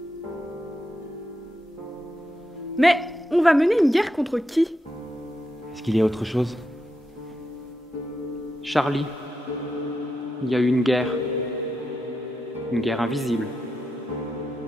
Mais on va mener une guerre contre qui? Est-ce qu'il y a autre chose? Charlie, il y a eu une guerre invisible.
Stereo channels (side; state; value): both; normal; correlation 0.85